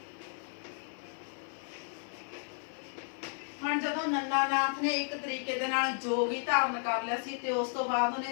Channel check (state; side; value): silent; right; 55 dB below the other